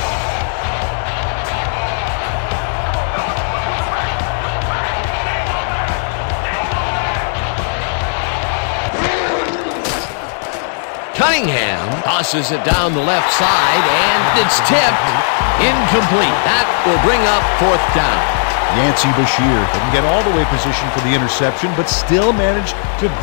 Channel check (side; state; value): right; silent; 68 dB below the other